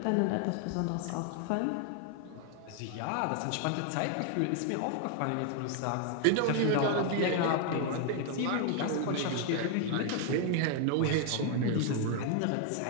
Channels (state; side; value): different; both; correlation 0.00